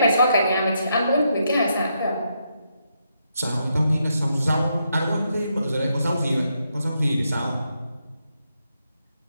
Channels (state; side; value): inverted; both; correlation -0.80